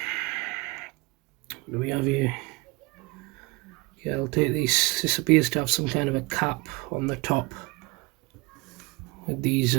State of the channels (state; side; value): quieter; left; 25.7 dB